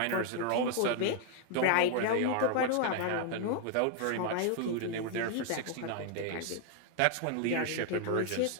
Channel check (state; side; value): different; both; correlation 0.00